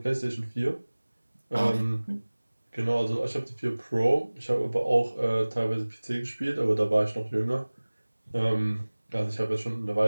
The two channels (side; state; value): both; inverted; correlation -1.00